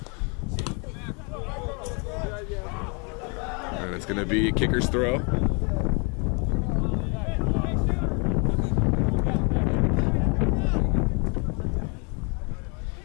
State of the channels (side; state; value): right; quieter; 34.2 dB